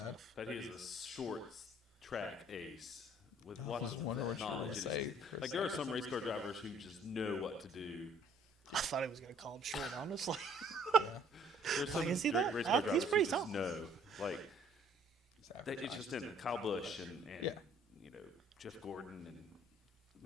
enough. But he is a short track ace with lots of wonder what you knowledge. were in his- gonna say, Like, there are some race car drivers who just know what to do. I thought he was going to call him short, honestly. There's some Like, is he great that? race car He's drivers pretty who tall. just know. Like, it's just in Kyle Busch and you know, Jeff Gordon and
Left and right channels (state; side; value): normal; both; correlation 0.59